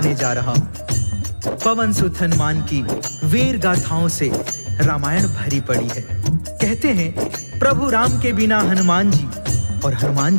जा रहा हूँ। पवन सुत हनुमान की वीर गाथाओं से रामायण भरी पड़ी है। कहते हैं प्रभु राम के बिना हनुमान जी और हनुमान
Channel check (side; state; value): both; inverted; correlation -1.00